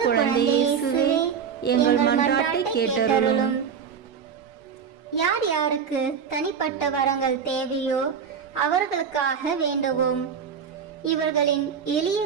குழந்தை இயேசுவே, எங்கள் மன்றாட்டை கேட்டருளும். யார் யாருக்கு தனிப்பட்ட வரங்கள் தேவையோ அவர்களுக்காக வேண்டுவோம். இவர்களின் எளிய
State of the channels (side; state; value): left; quieter; 7.0 dB